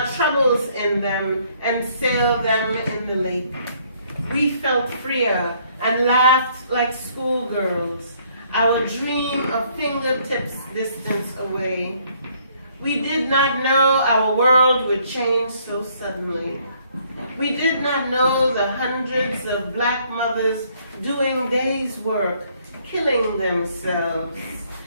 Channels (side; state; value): both; inverted; correlation -0.65